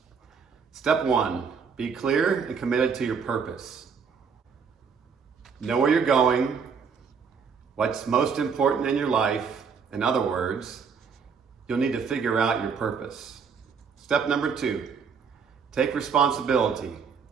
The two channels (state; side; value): quieter; left; 6.1 dB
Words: Step 1, be clear and committed to your purpose. Know where you're going, what's most important in your life. In other words, you'll need to figure out your purpose. Step number 2, take responsibility.